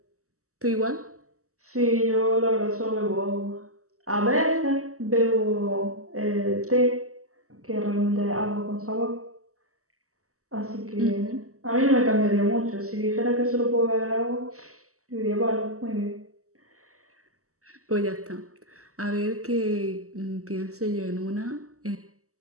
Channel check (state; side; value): late; left; 0.65 ms